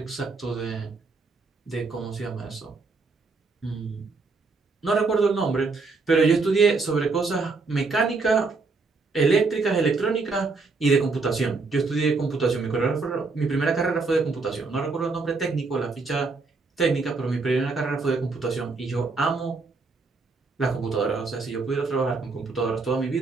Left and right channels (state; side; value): quieter; left; 4.0 dB